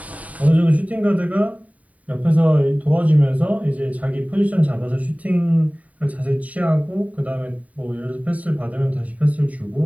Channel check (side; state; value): left; late; 0.070 ms